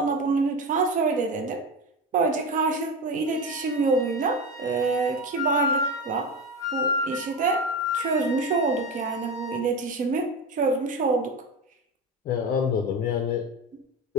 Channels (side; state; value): both; normal; correlation 0.21